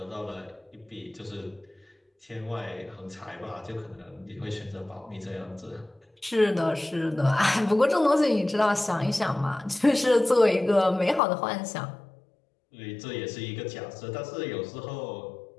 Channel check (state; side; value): drops out; right; at 11.2 s